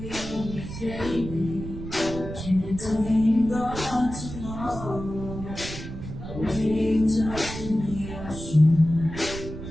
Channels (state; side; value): noise; right; rumble, 9 dB below the sound